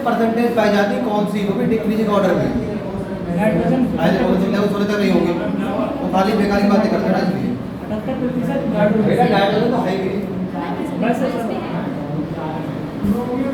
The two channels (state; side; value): identical; both; correlation 1.00